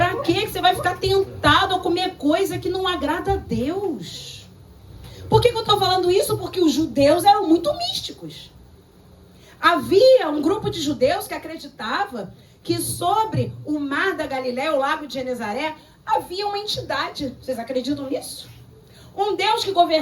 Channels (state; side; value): identical; both; correlation 1.00